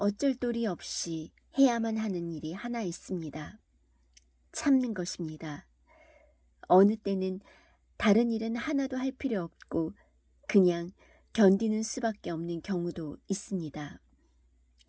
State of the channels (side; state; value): both; identical; correlation 1.00